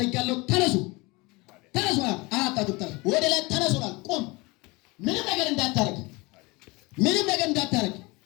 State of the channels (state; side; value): quieter; right; 24.8 dB